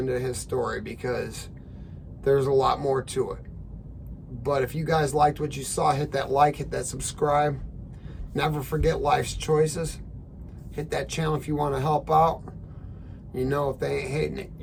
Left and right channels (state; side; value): identical; both; correlation 1.00